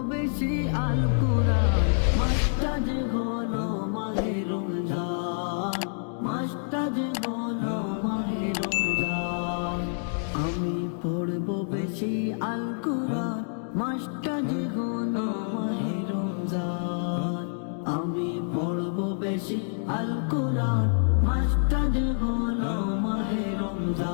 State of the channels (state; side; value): silent; right; digital silence